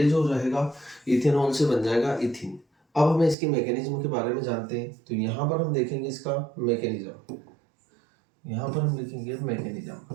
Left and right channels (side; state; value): left; drops out; at 3.4 s